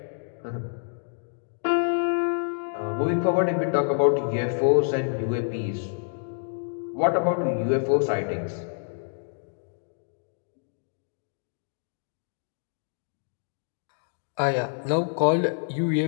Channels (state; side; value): silent; right; digital silence